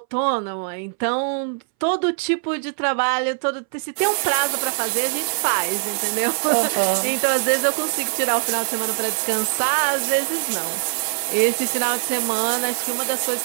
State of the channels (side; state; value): left; silent; 64 dB below the other